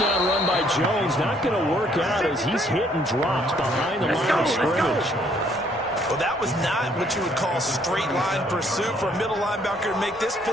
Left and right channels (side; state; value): both; normal; correlation 0.65